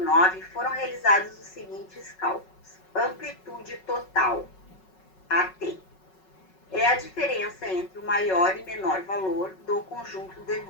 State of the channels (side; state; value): right; late; 5.4 ms